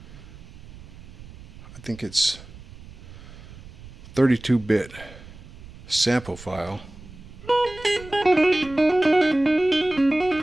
I think it's 32-bit sample file,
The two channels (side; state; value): right; noise; rumble, 18 dB below the sound